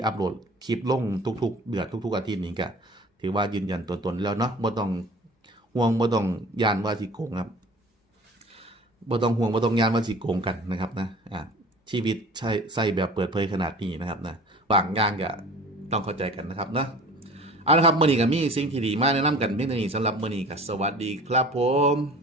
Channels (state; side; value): normal; both; correlation 0.44